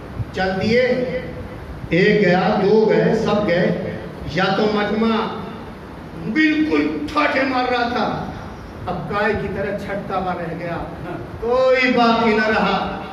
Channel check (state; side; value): identical; both; correlation 1.00